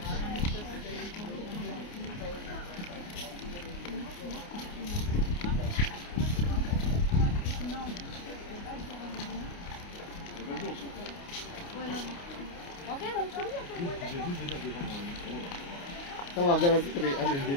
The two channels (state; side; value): late; right; 29 ms